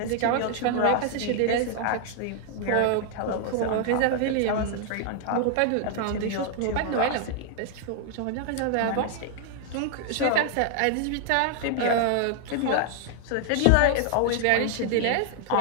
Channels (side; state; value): both; different; correlation 0.00